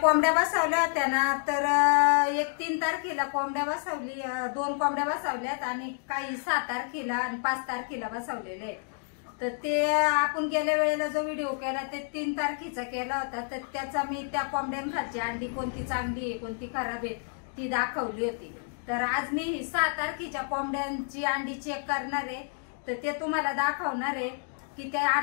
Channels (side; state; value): right; silent; 58 dB below the other